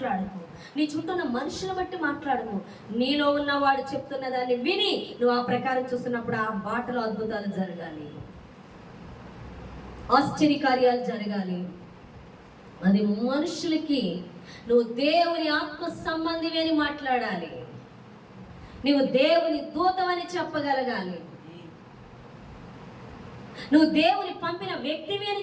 నీ చుట్టూ ఉన్న మనుషులను బట్టి మాట్లాడకు. నీలో ఉన్నవాడు చెప్తున్న దాన్ని విని నువ్వు ఆ ప్రకారం చూస్తున్నప్పుడు ఆ బాటలో అద్భుతాలు జరగాలి, ఆశ్చర్యకార్యాలు జరగాలి. అది మనుషులకి నువ్వు దేవుని ఆత్మ సంబంధివి అని మాట్లాడాలి, నువ్వు దేవుని దూతమని చెప్పగలగాలి, నువ్వు దేవుని పంపిన వ్యక్తివి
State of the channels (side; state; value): both; identical; correlation 1.00